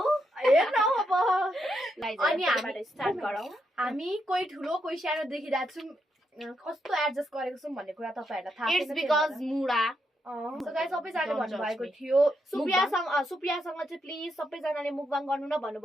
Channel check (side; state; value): both; normal; correlation 0.81